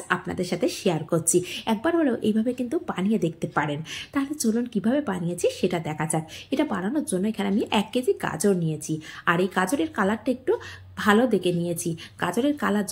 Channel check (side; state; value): both; identical; correlation 1.00